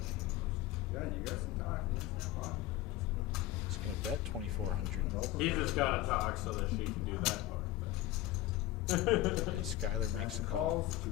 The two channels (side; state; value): right; quieter; 15.2 dB